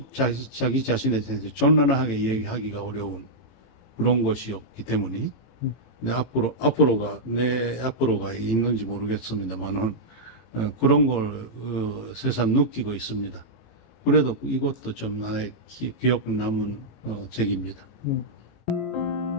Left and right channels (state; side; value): late; right; 18 ms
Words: 자기 자신에 대해서 전란하게 얘기하기가 어려운 그런 것이 없기 때문에 근데 앞으로가 있는지 모르겠습니다만은 그런 걸 새삼 느끼고 있습니다. 그래도 이것도 좀 나의 기억 남은 책입니다.